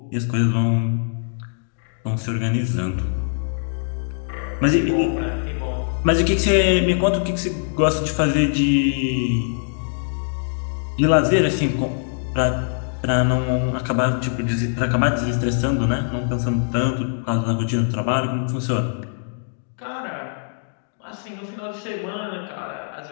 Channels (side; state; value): right; silent; digital silence